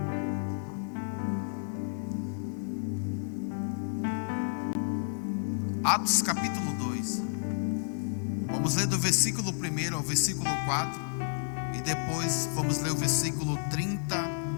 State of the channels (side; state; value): right; silent; 57 dB below the other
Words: Atos capítulo 2. Vamos ler do versículo 1 ao versículo 4. E depois vamos ler o versículo